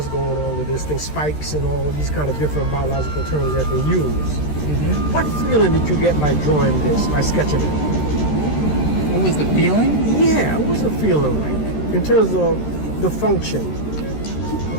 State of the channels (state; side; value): late; right; 13 ms